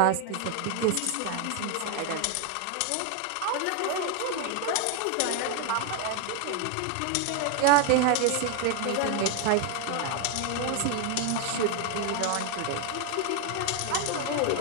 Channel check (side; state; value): both; different; correlation 0.00